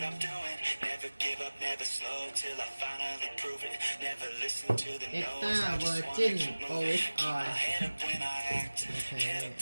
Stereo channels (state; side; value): inverted; both; correlation -1.00